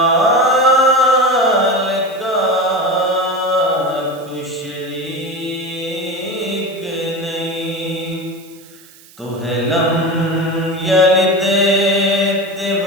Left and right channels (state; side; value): noise; right; hiss, 24 dB below the sound